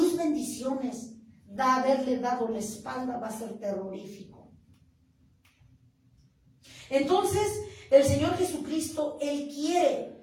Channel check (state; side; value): identical; both; correlation 1.00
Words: bendiciones, haberle dado la espalda, va a ser terrorífico. Entonces, el Señor Jesucristo, Él